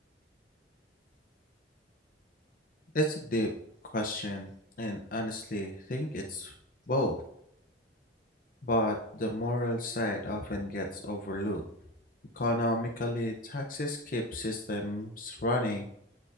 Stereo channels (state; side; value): normal; both; correlation 0.24